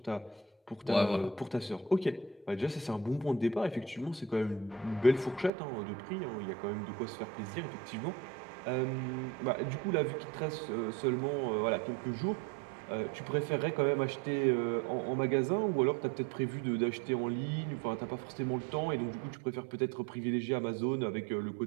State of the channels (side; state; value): left; drops out; at 5.5 s